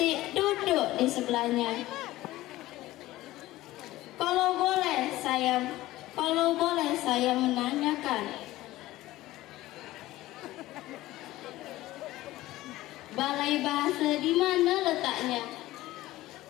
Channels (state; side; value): quieter; right; 16.8 dB